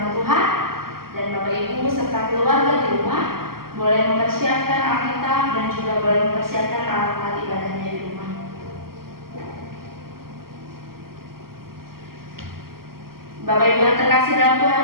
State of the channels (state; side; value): late; left; 0.92 ms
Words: Tuhan. Dan Bapak Ibu serta keluarga di rumah boleh mempersiapkan Alkitab dan juga boleh mempersiapkan alat-alat ibadahnya di rumah. Bapak Ibu yang terkasih dalam Tuhan